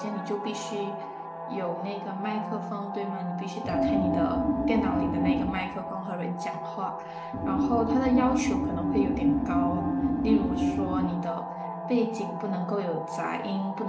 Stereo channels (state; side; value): identical; both; correlation 1.00